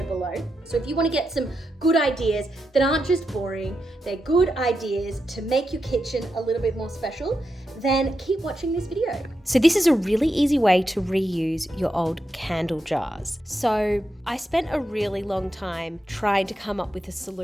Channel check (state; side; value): normal; both; correlation 0.86